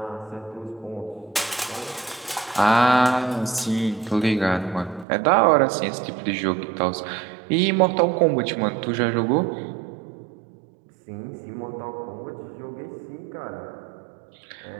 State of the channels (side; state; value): left; drops out; at 5.1 s